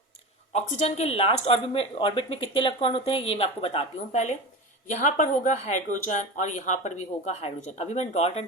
ऑक्सीजन के लास्ट ऑर्बिट में कितने इलेक्ट्रॉन होते हैं ये मैं आपको बताती हूँ पहले। यहाँ पर होगा हाइड्रोजन और यहाँ पर भी होगा हाइड्रोजन। अभी मैंने डॉट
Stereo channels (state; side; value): normal; both; correlation 0.27